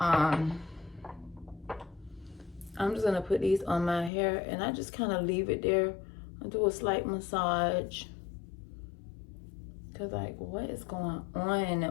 I'm just gonna put these on my hair, and I just kind of leave it there. I do a slight massage, cause like, what is going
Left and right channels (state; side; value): drops out; right; at 4.1 s